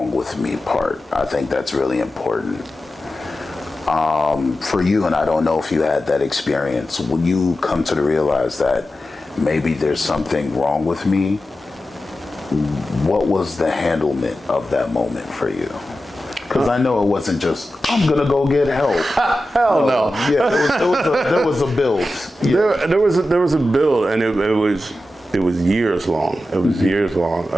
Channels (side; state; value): both; normal; correlation 0.92